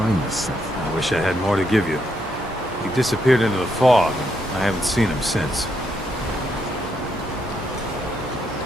this synth. I wish I had more to give you. He disappeared into the fog, and I haven't seen him since.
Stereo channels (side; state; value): both; normal; correlation 0.77